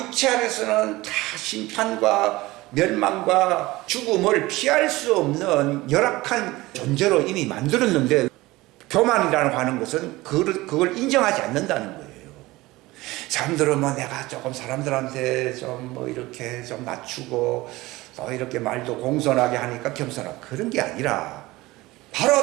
안에서는 다 심판과 멸망과 죽음을 피할 수 없는 열악한 존재로 이미 만들었는데 교만이라고 하는 것은 그걸 인정하지 않는다는 거예요. 사람들은 뭐 내가 조금 사람들한테 좀 뭐 이렇게 좀 낮추고 또 이렇게 말도 공손하게 하니까 겸손하고 그런 게 아니라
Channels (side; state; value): left; quieter; 19.6 dB